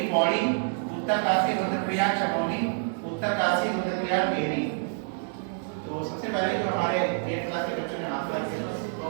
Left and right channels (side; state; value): left; silent; digital silence